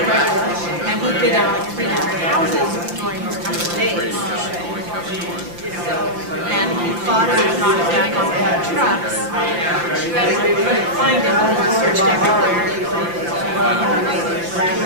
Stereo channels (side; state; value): left; late; 5.8 ms